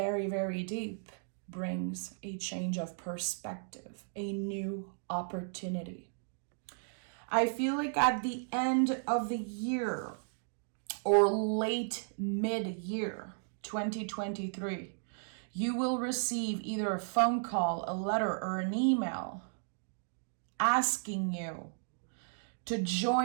very deep brings a change of perspective, a new opportunity. I feel like at the end of the year or late mid-year 2023, you will receive either a phone call, a letter, or an email asking you to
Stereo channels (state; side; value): silent; left; digital silence